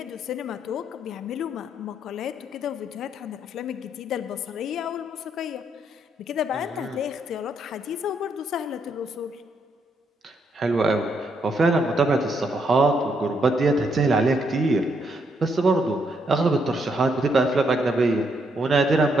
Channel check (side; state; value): both; normal; correlation 0.75